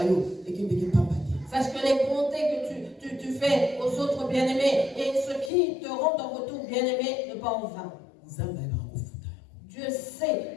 Sache que les bontés que tu fais aux autres bien-aimés et ce qui te rendent en retour bien-aimé ne pas en vain. Dieu sait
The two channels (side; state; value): right; drops out; at 5.5 s